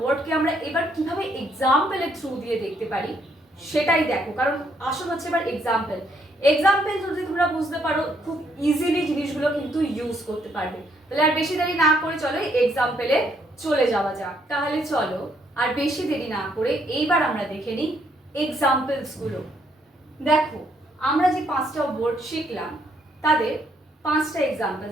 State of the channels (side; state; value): both; normal; correlation 0.71